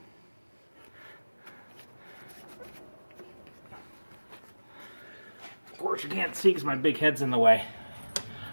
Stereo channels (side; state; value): both; inverted; correlation -1.00